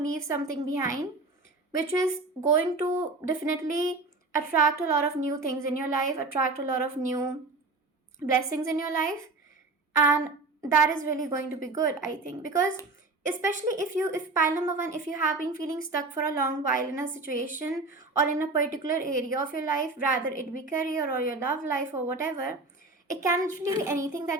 something behind, which is going to definitely attract a lot of new things in your life, attract a lot of new blessings in your life. And that is really going to be good, I think, because especially if pile number one, if you have been feeling stuck for a long while in a situation or in a particular area of your life, rather it be career or your love life or whatever, it can actually be anything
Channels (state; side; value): quieter; left; 3.5 dB